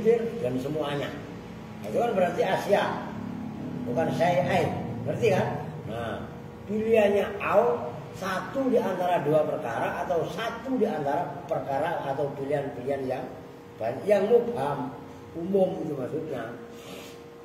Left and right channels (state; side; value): identical; both; correlation 1.00